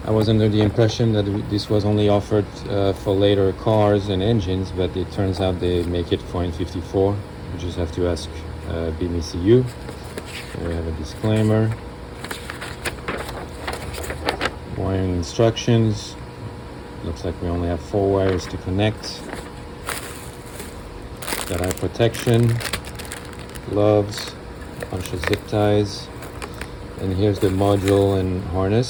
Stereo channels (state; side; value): identical; both; correlation 1.00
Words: I was under the impression that this was only offered for later cars and engines, but it turns out they make it for N54. You just have to ask BMCU. Here we have a disclaimer. Wiring instructions. Looks like we only have 4 wires to connect. Got eye protection, gloves, a bunch of zip ties, and here's the module and